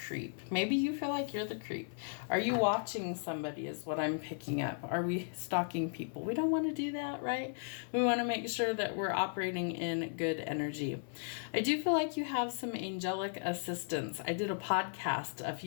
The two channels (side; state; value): right; silent; 54 dB below the other